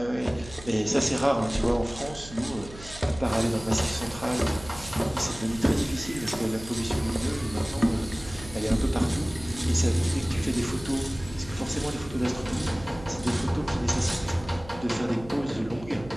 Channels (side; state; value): right; noise; hum, 16 dB below the sound